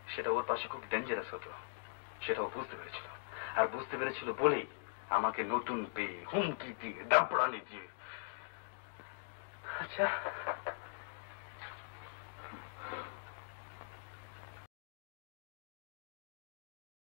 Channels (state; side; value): silent; right; digital silence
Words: সেটা ওর পাশে খুব ডেঞ্জারাস হতো, সেটা ও বুঝতে পেরেছিল। আর বুঝতে পেরেছিল বলেই আমাকে নতুন পেয়ে হুমকি দিয়ে দাপড়ানি দিয়ে। আচ্ছা,